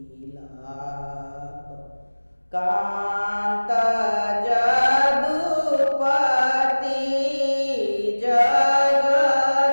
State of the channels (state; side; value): inverted; both; correlation -1.00